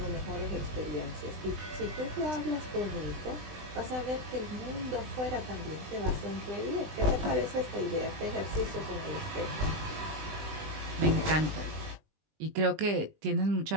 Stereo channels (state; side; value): late; left; 20 ms